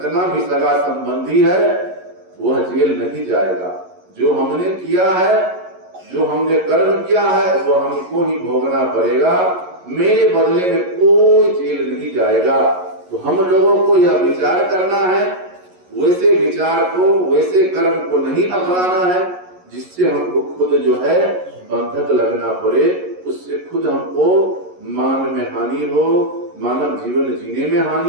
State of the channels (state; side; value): late; left; 11 ms